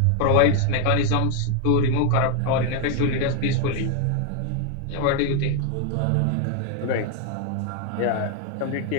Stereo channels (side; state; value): both; different; correlation 0.01